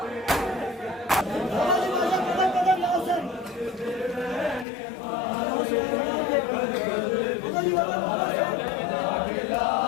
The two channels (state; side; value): drops out; right; at 4.7 s